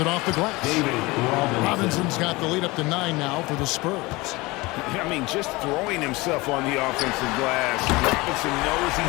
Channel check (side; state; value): right; quieter; 22.6 dB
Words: off the glass. Robinson's got the lead up to 9 now for the Spurs. I mean, just throwing himself on the offensive glass. Robinson knows